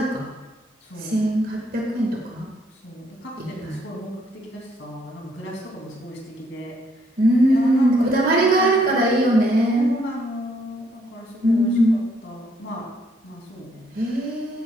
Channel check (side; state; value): both; normal; correlation 0.69